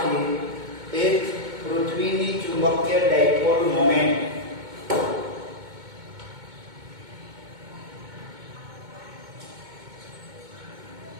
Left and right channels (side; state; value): left; late; 2.2 ms